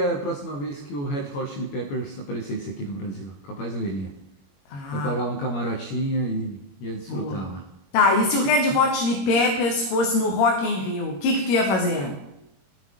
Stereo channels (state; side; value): late; right; 21 ms